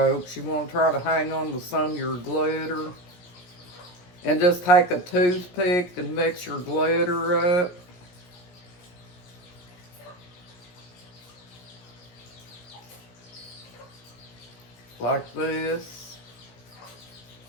You want to try to hang on to some of your glitter. And just take a toothpick and mix your glitter up. Like this.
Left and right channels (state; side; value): late; right; 17 ms